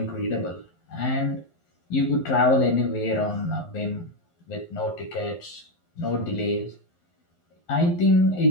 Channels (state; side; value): late; right; 11 ms